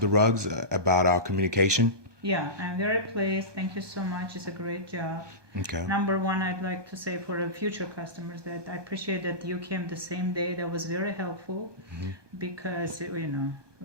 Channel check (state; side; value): late; left; 1.2 ms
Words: the rugs about our communication? Yeah, I'm very pleased. Thank you so much. It's a great job. Okay. Number one, I'd like to say for the future customers that I appreciate that you came the same day. That was very helpful because